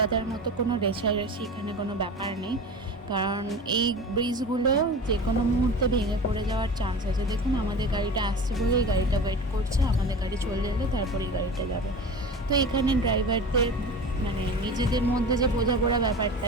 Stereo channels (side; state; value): both; normal; correlation 0.33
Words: মতো কোনো রেষারেষি এখানে কোনো ব্যাপার নেই, কারণ এই ব্রিজগুলো যে কোনো মুহূর্তে ভেঙে পড়ে যাওয়ার চান্স আছে। দেখুন আমাদের গাড়িটা আসছে বলে এই গাড়িটা ওয়েট করছে, আমাদের গাড়ি চলে এলে তারপর এই গাড়িটা যাবে। তো এখানে ড্রাইভারদের মানে নিজেদের মধ্যে যে বোঝাপড়া ব্যাপারটা,